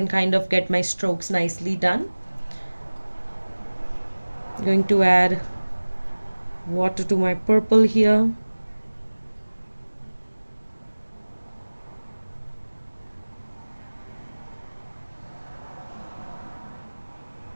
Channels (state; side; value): inverted; both; correlation -1.00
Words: kind of get my strokes nicely done. I'm going to add water to my purple here.